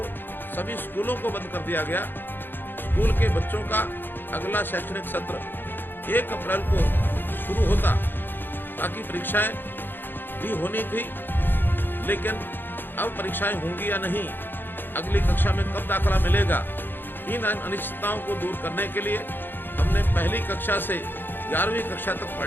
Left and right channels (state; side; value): late; right; 0.097 ms